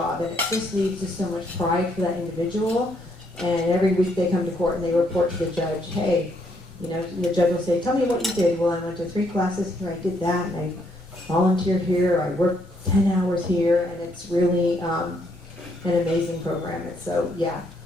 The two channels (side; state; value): both; normal; correlation 0.72